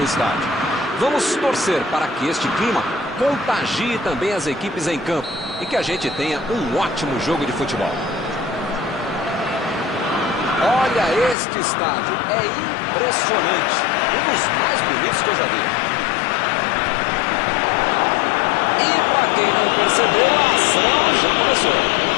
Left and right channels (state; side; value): drops out; right; at 11.4 s